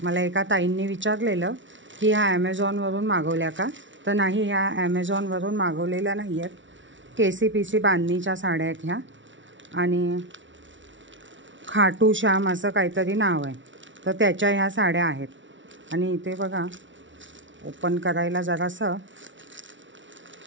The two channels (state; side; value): late; left; 0.55 ms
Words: मला एका ताईंनी विचारलेलं की ह्या ॲमेझॉनवरून मागवल्या का, तर नाही, ह्या ॲमेझॉनवरून मागवलेल्या नाही आहेत। KCPC बांधणीच्या साड्या आहेत ह्या, आणि खाटू श्याम असं काहीतरी नाव आहे, तर त्याच्या ह्या साड्या आहेत। आणि इथे बघा, ओपन करायला जरासं